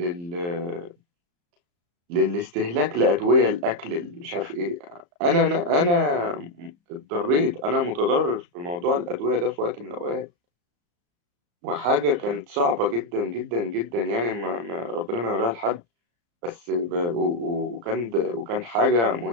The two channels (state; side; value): late; left; 35 ms